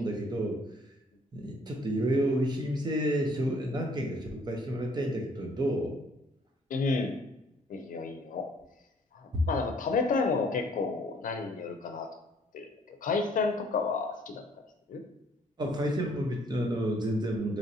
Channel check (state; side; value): normal; both; correlation 0.61